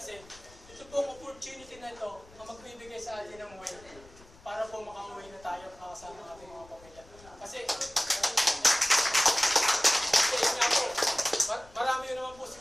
ito pong opportunity na ito na magbibigay sa atin ng way para po makauwi na tayo at makasama ang ating mga pamilya. Kasi nga po, marami yun naman po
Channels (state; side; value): noise; left; rumble, 23 dB below the sound